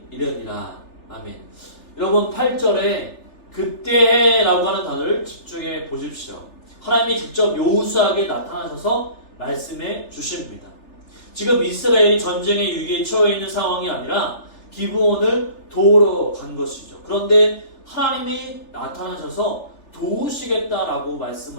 이르니라. 아멘. 여러분 8절에 그때라고 하는 단어를 집중해 보십시오. 하나님이 직접 여호수아에게 나타나셔서 말씀해 주십니다. 지금 이스라엘이 전쟁의 위기에 처해 있는 상황이 아니라 기브온을 도우러 간 것이죠. 그런데 하나님이 나타나셔서 도우시겠다라고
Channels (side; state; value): right; late; 3.4 ms